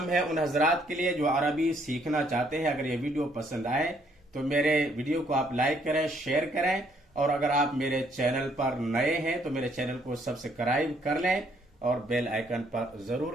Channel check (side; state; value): both; normal; correlation 0.67